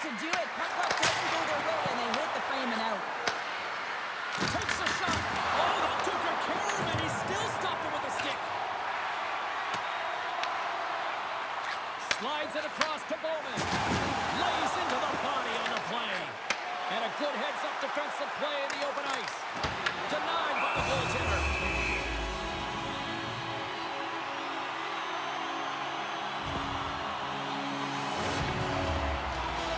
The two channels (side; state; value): both; identical; correlation 1.00